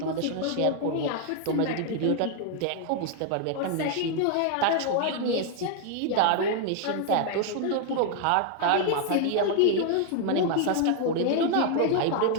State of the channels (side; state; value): both; different; correlation 0.00